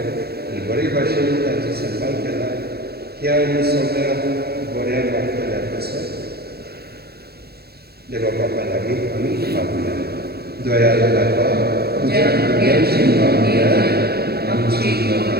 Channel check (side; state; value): left; late; 0.46 ms